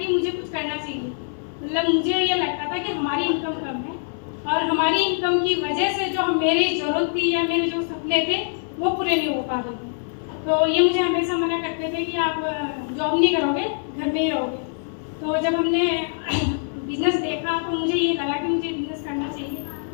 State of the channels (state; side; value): silent; right; 59 dB below the other